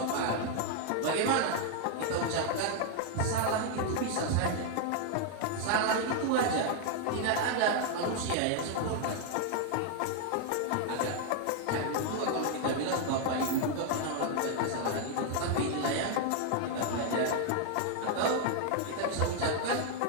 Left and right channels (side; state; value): both; different; correlation 0.00